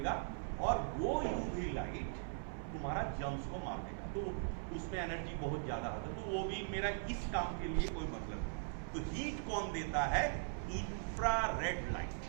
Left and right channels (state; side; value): silent; left; 51 dB below the other